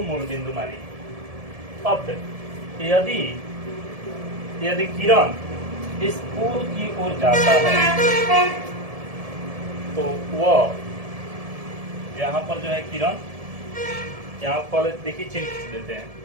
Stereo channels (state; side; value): late; left; 1.7 ms